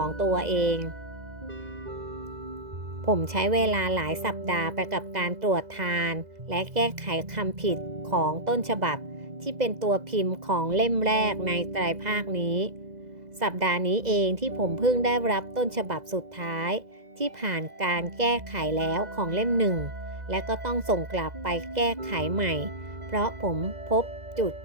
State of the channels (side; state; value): left; late; 2.0 ms